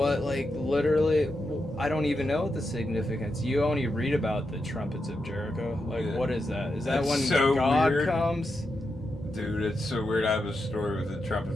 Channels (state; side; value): normal; both; correlation 0.86